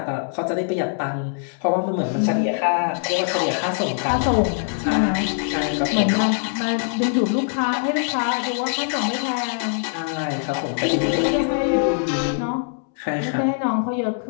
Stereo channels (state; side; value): silent; right; 63 dB below the other